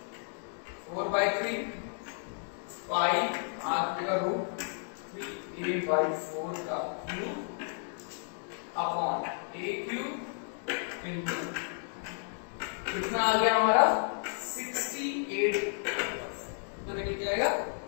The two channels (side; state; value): right; silent; 56 dB below the other